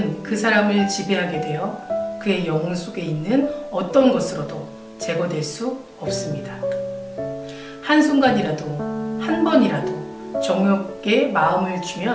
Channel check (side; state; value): both; identical; correlation 1.00